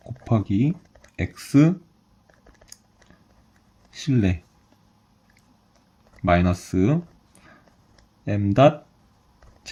x 실내 마이너스 m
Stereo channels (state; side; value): identical; both; correlation 1.00